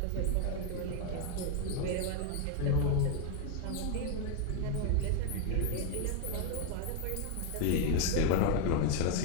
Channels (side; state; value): both; different; correlation 0.01